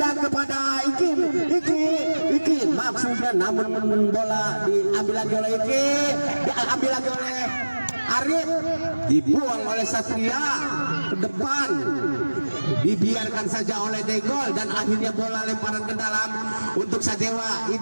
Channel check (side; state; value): both; inverted; correlation -1.00